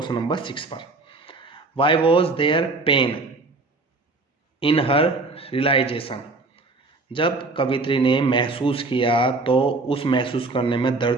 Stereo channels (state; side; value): quieter; left; 3.4 dB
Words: नंबर 6 पर। Why was there pain in her realisation, जब कवित्री ने महसूस किया तो उस महसूस करने में